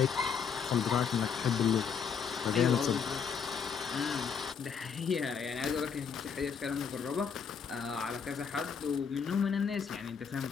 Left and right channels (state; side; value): quieter; right; 6.6 dB